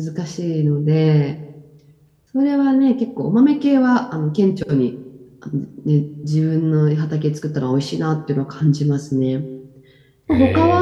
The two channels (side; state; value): both; identical; correlation 1.00